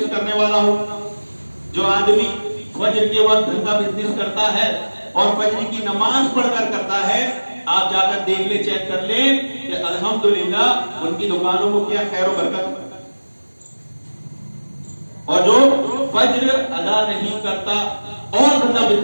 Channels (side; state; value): both; inverted; correlation -1.00